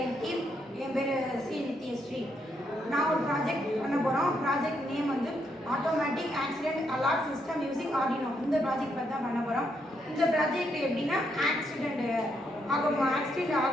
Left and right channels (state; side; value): normal; both; correlation 0.77